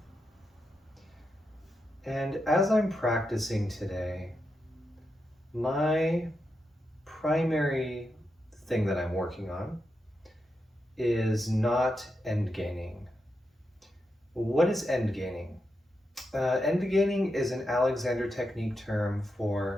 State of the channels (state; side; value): normal; both; correlation 0.86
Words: And as I'm practicing today, my primary thing that I'm working on is not end gaining. What is end gaining? End gaining is an Alexander technique term